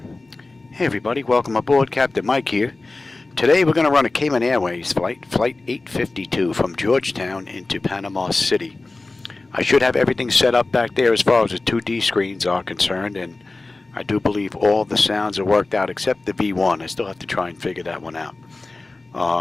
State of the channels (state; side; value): quieter; right; 3.3 dB